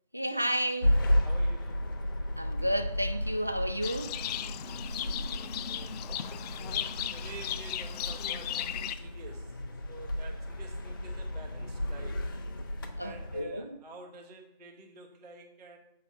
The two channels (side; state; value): both; inverted; correlation -0.83